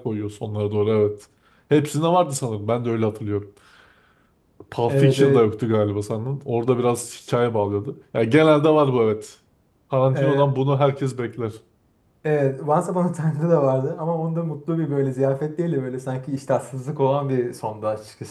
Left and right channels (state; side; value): identical; both; correlation 1.00